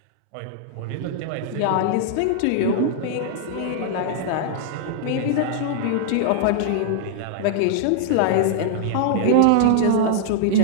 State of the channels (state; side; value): different; both; correlation -0.01